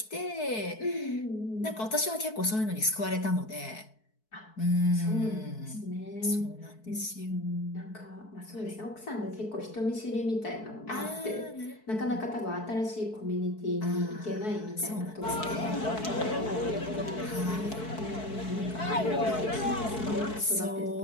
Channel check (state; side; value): late; right; 4.6 ms